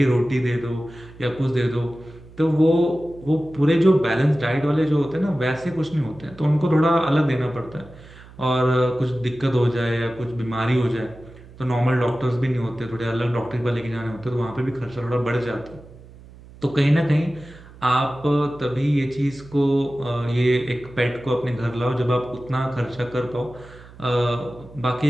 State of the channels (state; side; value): noise; right; hum, 20 dB below the sound